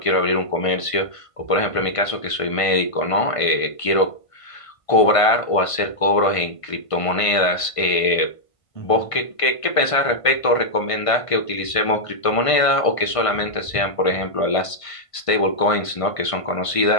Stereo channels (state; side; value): late; right; 1.5 ms